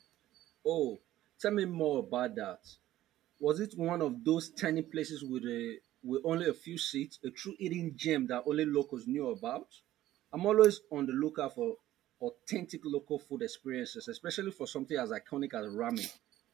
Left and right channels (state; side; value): quieter; left; 14.2 dB